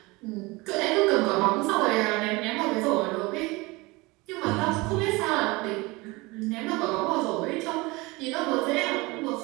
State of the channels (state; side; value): quieter; left; 23.5 dB